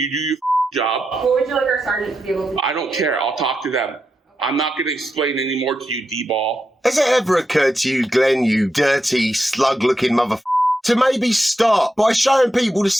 job. What would you like our sergeant to be able to do? I don't care. I'll talk to them. I'm not going to explain any more to you, D-ball. Has it ever occurred to you, Glenn, you dirty, slug-looking to maybe start by showing people the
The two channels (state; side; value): normal; both; correlation 0.86